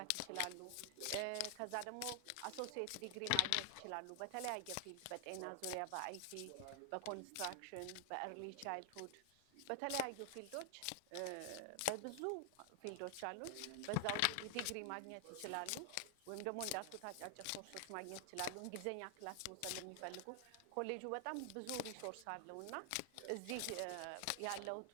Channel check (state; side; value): different; both; correlation 0.00